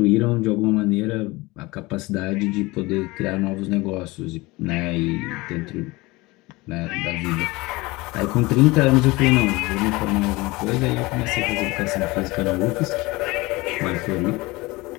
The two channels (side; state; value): right; quieter; 22.2 dB